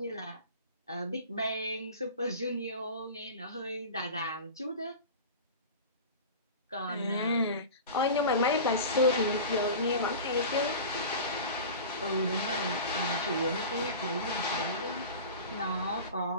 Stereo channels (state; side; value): inverted; both; correlation -0.33